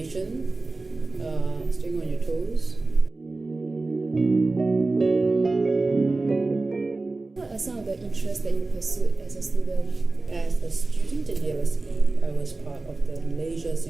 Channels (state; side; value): quieter; left; 3.4 dB